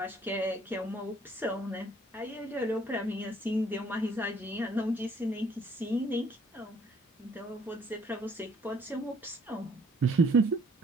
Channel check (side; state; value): both; normal; correlation 0.61